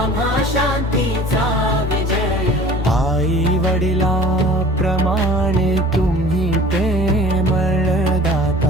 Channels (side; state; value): both; normal; correlation 0.45